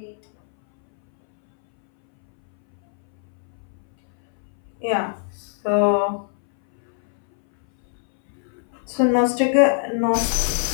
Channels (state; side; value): silent; right; 64 dB below the other